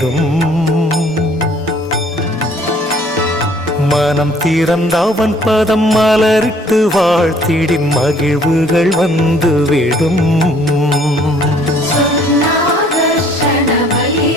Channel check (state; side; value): normal; both; correlation 0.59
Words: மனம் திறந்தவன் பதம் மலரிட்டு வாழ்த்திடின் மகிழ்வுகள் வந்துவிடும்.